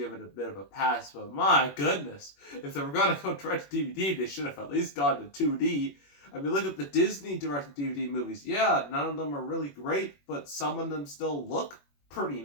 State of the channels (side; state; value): right; late; 21 ms